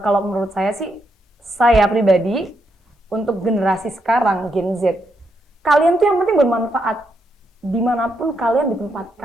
menurut saya sih, saya pribadi untuk generasi sekarang Gen Z, kalian tuh yang penting bermanfaat dimanapun kalian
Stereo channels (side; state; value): both; normal; correlation 0.80